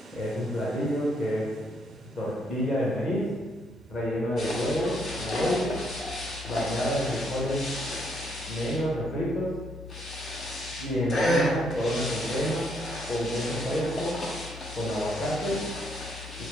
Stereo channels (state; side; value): normal; both; correlation 0.72